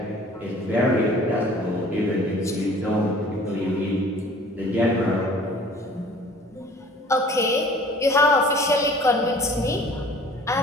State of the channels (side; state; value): both; normal; correlation 0.49